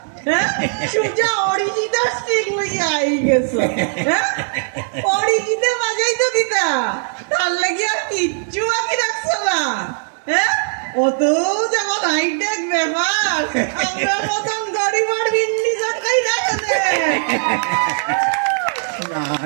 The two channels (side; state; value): left; silent; 67 dB below the other